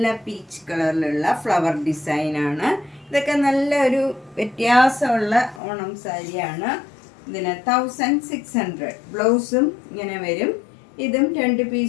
പീച്ച് കളറിലുള്ള ഫ്ലവർ ഡിസൈനാണ്. ഇതൊക്കെ നല്ല ഒരു വ്യത്യാസമുള്ള ഓണം സാരിയാണ്. ഇതിന് 1600. ബ്ലൗസും ഇങ്ങനെ വരും. ഇതും 2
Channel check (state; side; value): drops out; right; at 5.6 s